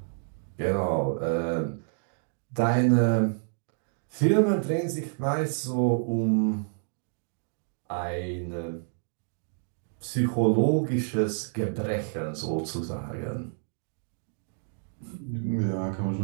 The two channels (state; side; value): silent; left; digital silence